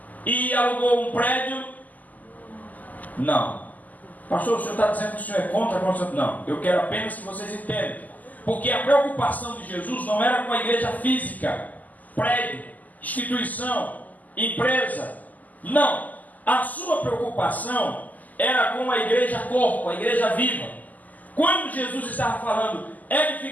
e alugou um prédio? Não. Pastor, o senhor está dizendo que o senhor é contra a construção? Não, eu quero apenas que vocês entendam. Porque a preocupação de Jesus não era com a igreja física, prédio, instituição, empresa. Não. A sua preocupação era com a igreja corpo, a igreja viva. Quando Jesus estava falando,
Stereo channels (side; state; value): right; late; 0.080 ms